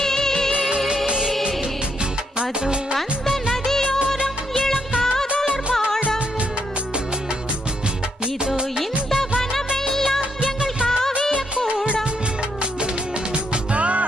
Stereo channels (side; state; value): both; normal; correlation 0.76